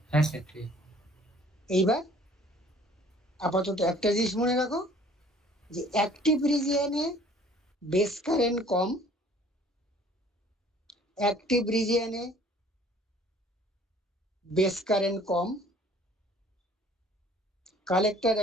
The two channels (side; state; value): both; normal; correlation 0.54